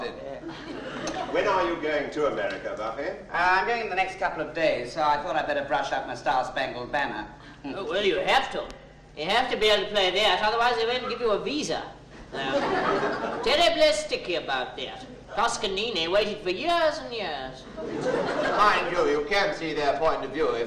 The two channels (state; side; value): identical; both; correlation 1.00